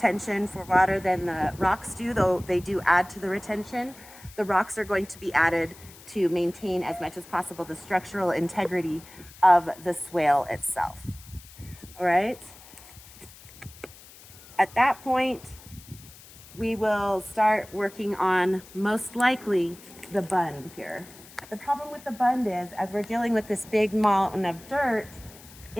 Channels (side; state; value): left; noise; hiss, 20 dB below the sound